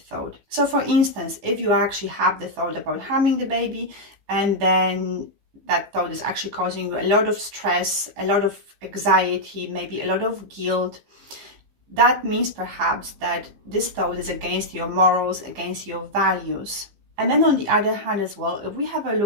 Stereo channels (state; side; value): late; left; 15 ms